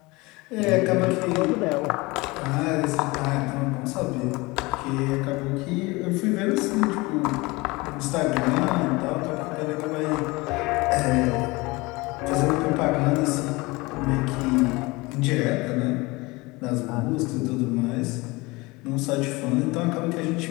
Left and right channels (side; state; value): right; quieter; 23.5 dB